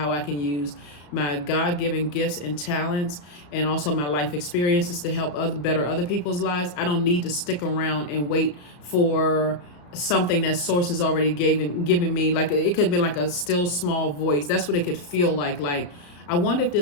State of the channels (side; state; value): right; late; 34 ms